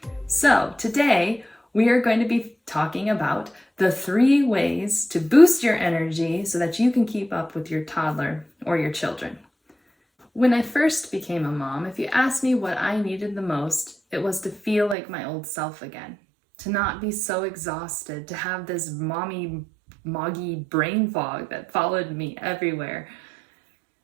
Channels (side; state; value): left; drops out; at 15.0 s